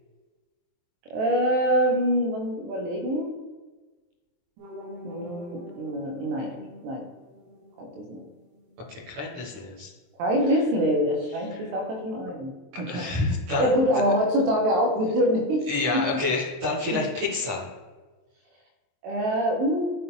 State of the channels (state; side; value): late; left; 23 ms